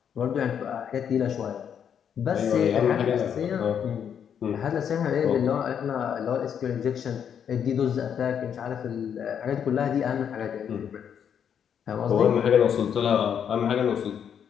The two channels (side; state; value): right; quieter; 8.2 dB